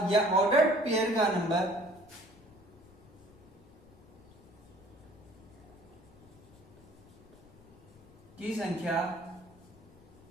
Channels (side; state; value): left; noise; rumble, 24 dB below the sound